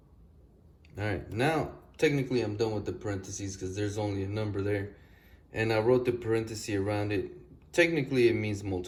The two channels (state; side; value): identical; both; correlation 1.00